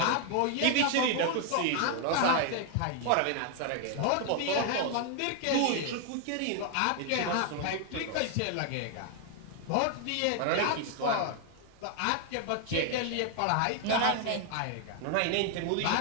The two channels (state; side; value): different; both; correlation 0.00